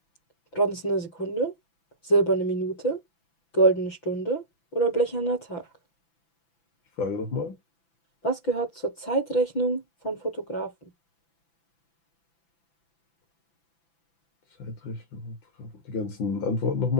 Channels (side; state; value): right; late; 5.9 ms